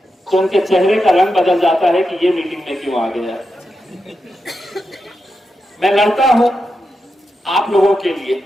तो उनके चेहरे का रंग बदल जाता है कि ये मीटिंग में क्यों आ गया। मैं लड़ता हूं आप लोगों के लिए,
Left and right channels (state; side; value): normal; both; correlation 0.88